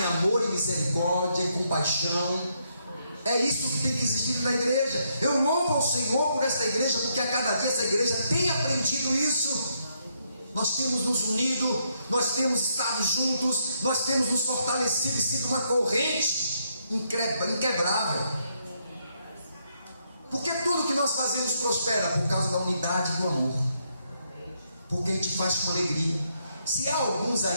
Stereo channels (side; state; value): both; inverted; correlation -0.76